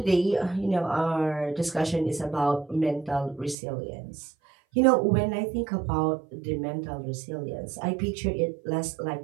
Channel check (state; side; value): drops out; left; at 3.6 s